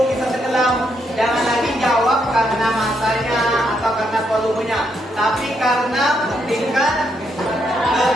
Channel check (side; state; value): both; normal; correlation 0.77